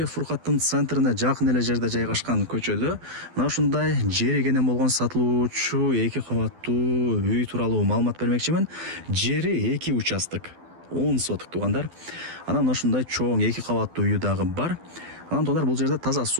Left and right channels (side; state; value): left; late; 12 ms